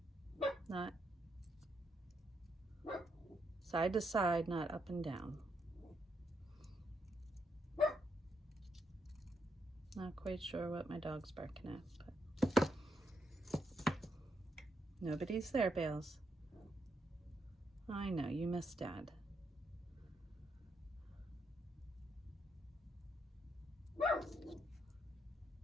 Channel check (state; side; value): normal; both; correlation 0.78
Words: not side to side, not up and down. Not quite sure what my dog's barking at, but nobody's there, Bales. I know, you miss Dad.